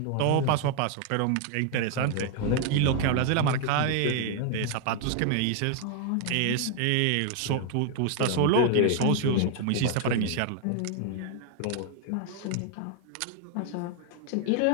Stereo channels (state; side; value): different; both; correlation 0.00